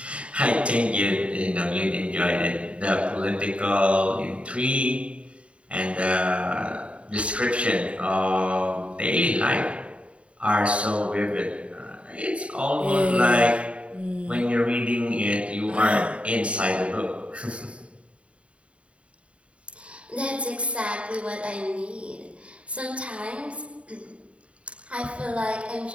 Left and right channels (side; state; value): left; late; 0.062 ms